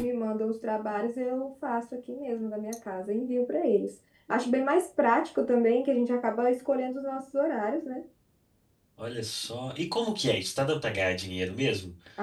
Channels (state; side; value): identical; both; correlation 1.00